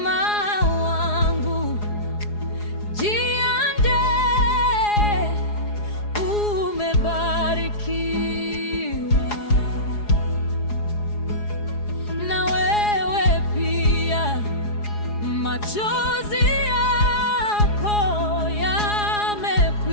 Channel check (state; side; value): late; right; 4.8 ms